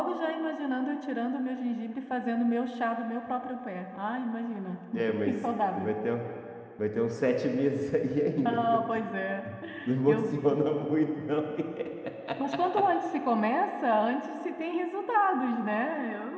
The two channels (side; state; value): both; identical; correlation 1.00